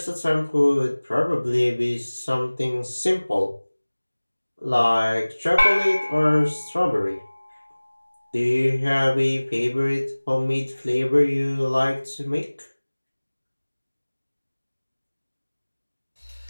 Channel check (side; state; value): both; inverted; correlation -1.00